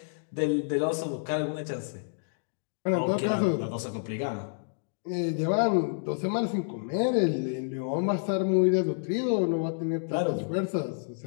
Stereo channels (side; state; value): right; silent; digital silence